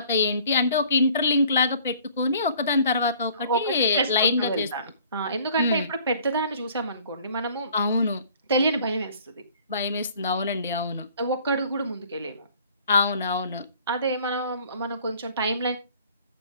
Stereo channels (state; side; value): inverted; both; correlation -0.55